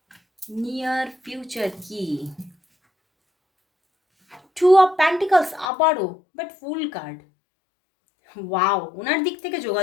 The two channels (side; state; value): right; drops out; at 5.7 s